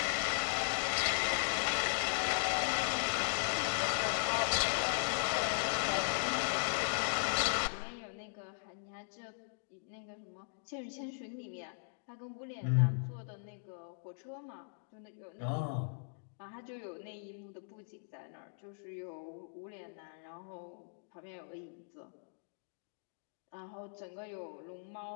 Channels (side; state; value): right; silent; digital silence